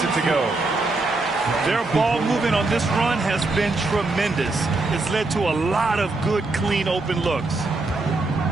it to go. Their ball movement on this run has been tremendous. It's led to a lot of good, clean, open looks.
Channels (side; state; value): left; quieter; 3.2 dB